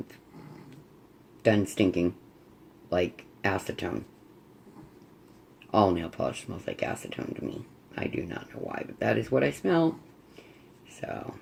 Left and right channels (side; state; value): both; identical; correlation 1.00